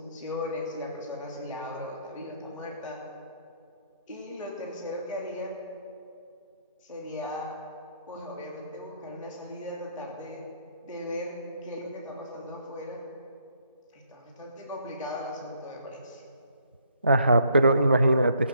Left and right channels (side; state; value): both; inverted; correlation -0.69